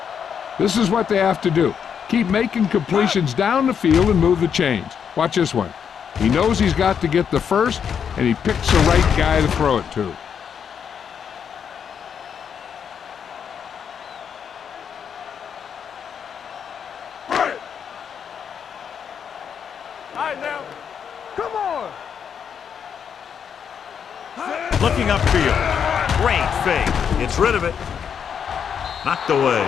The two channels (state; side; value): quieter; right; 7.6 dB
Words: This is what they have to do. Keep making completions down the field and move the chains. Watch this one. He knows he's got to get the first, and he picks the right guy to throw it to. Looking upfield. Great fake. Gets rid of it. Knocked away.